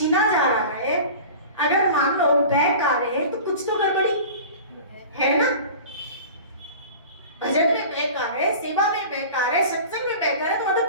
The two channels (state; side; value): inverted; both; correlation -0.37